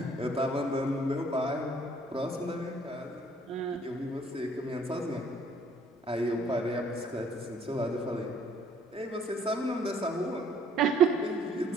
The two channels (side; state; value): both; normal; correlation 0.60